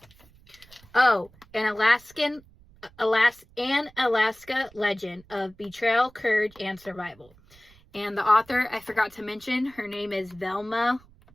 Oh, an Alaska legend of betrayal, courage, and survival. And the author, I forgot to mention, her name is Velma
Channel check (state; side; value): noise; right; rumble, 27 dB below the sound